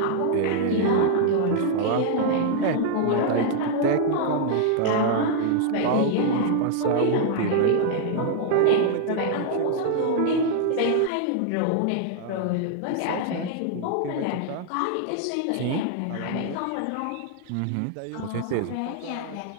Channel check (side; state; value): both; different; correlation -0.01